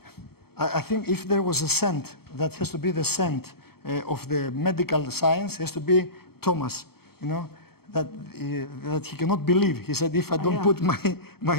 I think if there was a cent, that has to be the cent of the medical science, has to be Thomas, you know, that he cannot believe. He said, if I don't ja. put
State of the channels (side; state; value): right; late; 0.95 ms